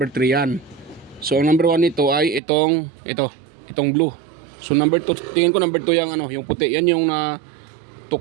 3 yan. So number 1 nito ay itong blue. So number 2, tingin ko number 2 yung yung puti. Yan yung na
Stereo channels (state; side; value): drops out; left; at 2.4 s